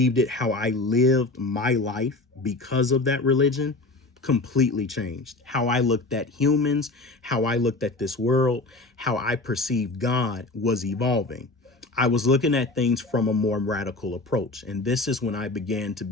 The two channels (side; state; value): right; quieter; 3.1 dB